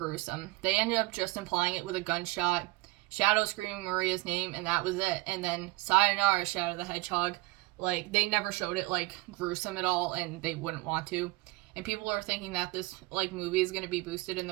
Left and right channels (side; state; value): left; quieter; 21.6 dB